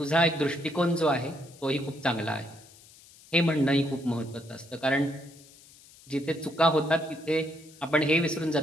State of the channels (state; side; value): noise; left; hiss, 24 dB below the sound